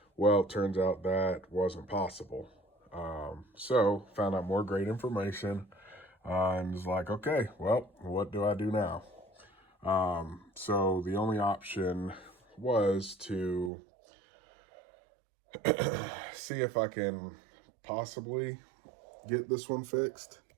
Well, it turns out that wasn't possible. So found out more great information and was like, okay, well, what do I do now? So the only option was to see if I can possibly get this one fixed.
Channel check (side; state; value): left; drops out; at 13.7 s